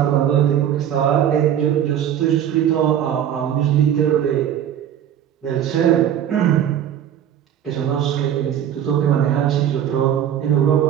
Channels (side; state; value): left; quieter; 10.0 dB